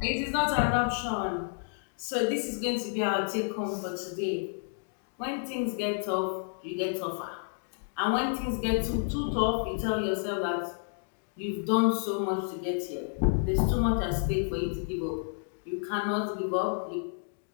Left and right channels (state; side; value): silent; right; 57 dB below the other